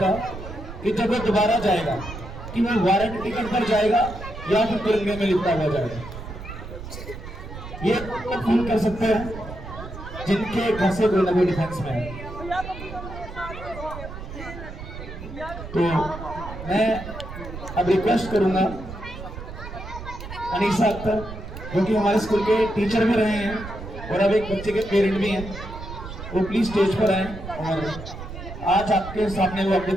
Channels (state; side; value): noise; right; rumble, 11 dB below the sound